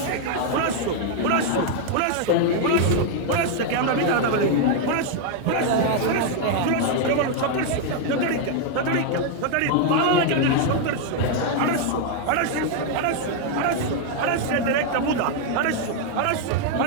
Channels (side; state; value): both; different; correlation 0.00